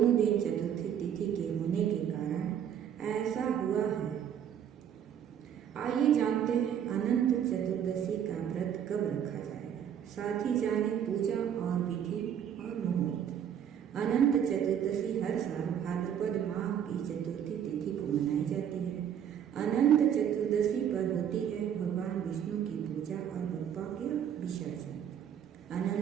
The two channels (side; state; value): left; quieter; 9.1 dB